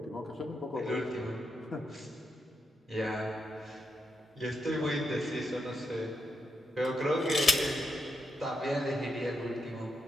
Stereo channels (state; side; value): normal; both; correlation 0.83